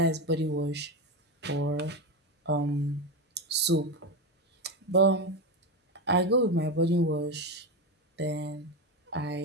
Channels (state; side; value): normal; both; correlation 0.16